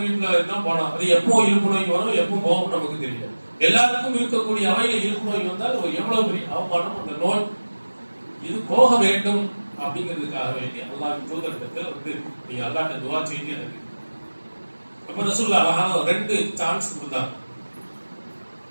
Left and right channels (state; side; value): inverted; both; correlation -1.00